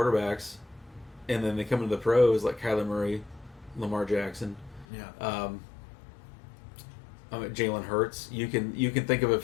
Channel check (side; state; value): right; drops out; at 4.9 s